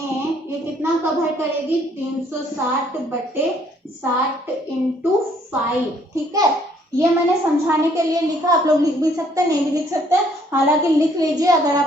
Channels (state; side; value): normal; both; correlation 0.64